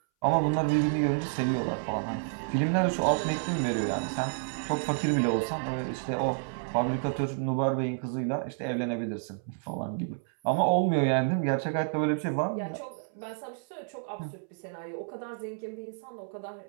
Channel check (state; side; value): silent; left; 58 dB below the other